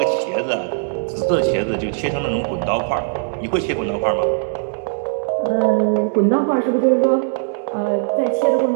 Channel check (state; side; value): silent; left; digital silence